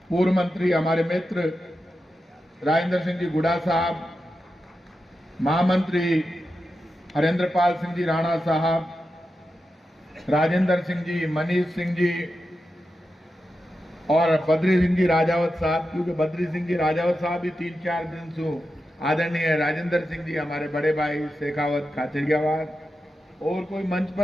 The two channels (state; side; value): normal; both; correlation 0.89